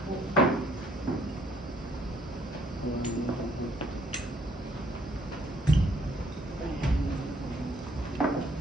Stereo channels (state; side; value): normal; both; correlation 0.65